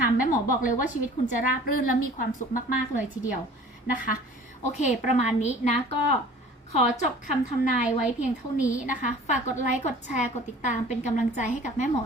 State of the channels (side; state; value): both; normal; correlation 0.47